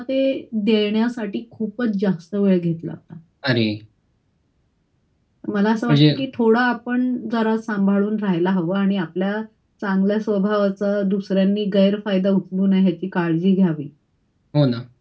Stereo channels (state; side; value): identical; both; correlation 1.00